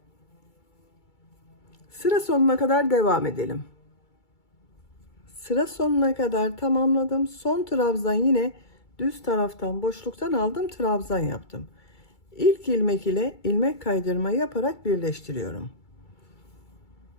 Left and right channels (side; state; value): right; late; 2.3 ms